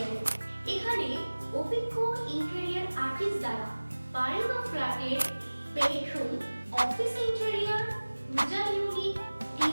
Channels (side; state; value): both; inverted; correlation -1.00